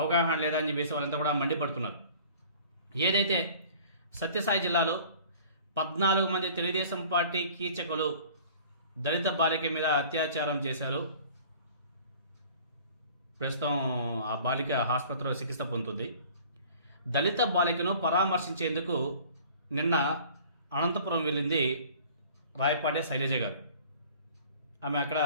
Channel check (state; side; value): inverted; both; correlation -0.48